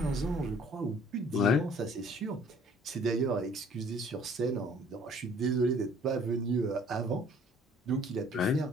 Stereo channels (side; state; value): both; normal; correlation 0.56